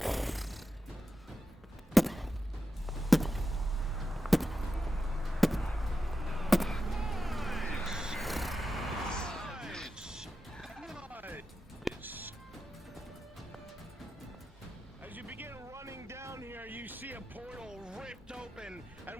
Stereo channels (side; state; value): both; normal; correlation 0.89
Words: As you begin running down here, you see a portal ripped open,